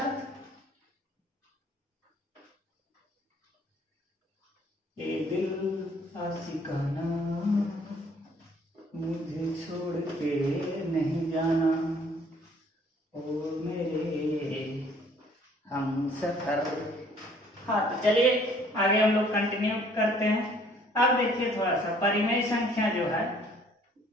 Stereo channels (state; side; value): normal; both; correlation 0.59